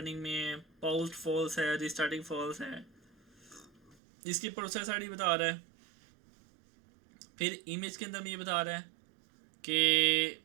में, पॉस्ट फॉल्स है, रिस्टार्टिंग फॉल्स है, इसकी प्रोसेस आईडी बता रहा है। फिर इमेज के अंदर में ये बता रहा है कि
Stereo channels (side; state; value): left; drops out; at 4.0 s